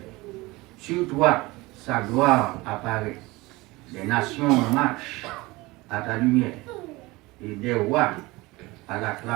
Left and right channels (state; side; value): quieter; left; 21.7 dB